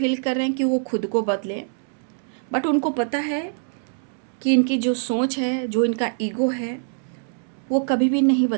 कर रहे हैं कि वो खुद को बदले, बट उनको पता है कि इनकी जो सोच है, जो इनका ईगो है, वो कभी भी नहीं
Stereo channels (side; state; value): left; silent; digital silence